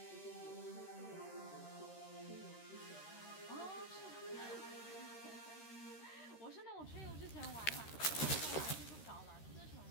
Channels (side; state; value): right; late; 13 ms